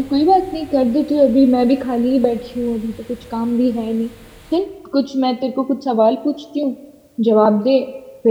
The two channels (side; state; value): both; identical; correlation 1.00